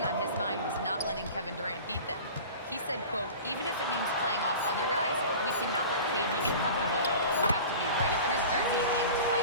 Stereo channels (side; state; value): both; inverted; correlation -0.38